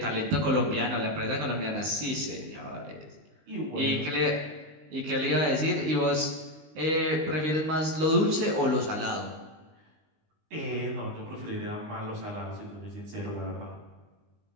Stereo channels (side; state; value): left; late; 19 ms